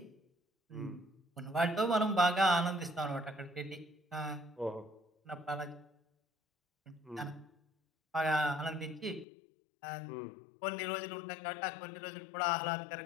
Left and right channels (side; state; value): right; drops out; at 9.2 s